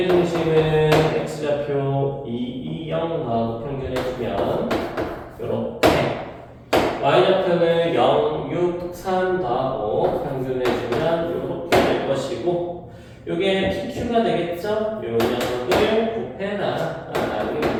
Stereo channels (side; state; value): both; identical; correlation 1.00